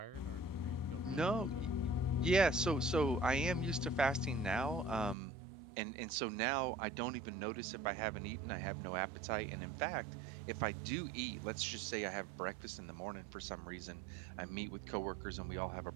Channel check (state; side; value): drops out; left; at 5.2 s